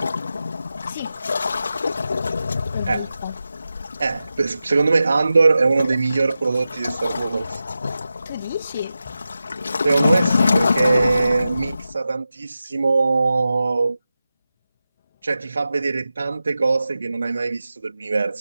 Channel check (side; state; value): both; inverted; correlation -0.92